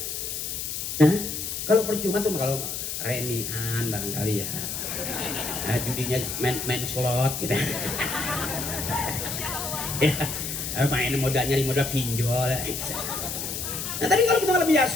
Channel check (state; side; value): noise; left; hiss, 4 dB below the sound